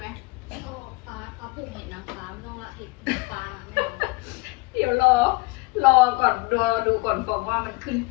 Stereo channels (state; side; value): quieter; right; 24.2 dB